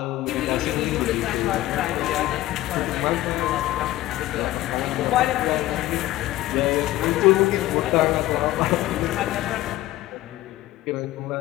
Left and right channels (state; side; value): quieter; right; 15.9 dB